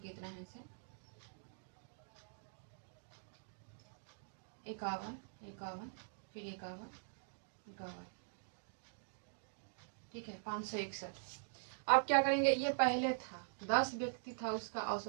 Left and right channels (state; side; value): silent; left; digital silence